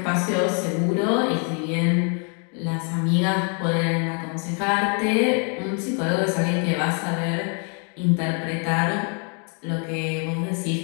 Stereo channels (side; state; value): right; quieter; 39.3 dB